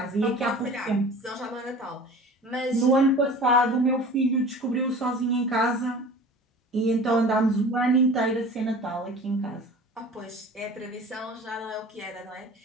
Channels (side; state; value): both; normal; correlation 0.41